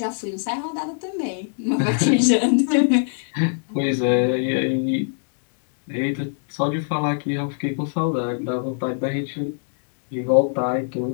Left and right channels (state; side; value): silent; right; digital silence